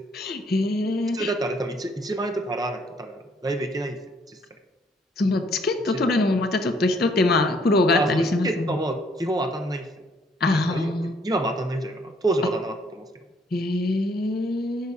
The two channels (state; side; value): normal; both; correlation 0.65